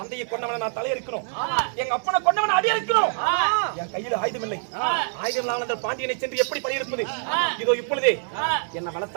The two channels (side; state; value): left; silent; 62 dB below the other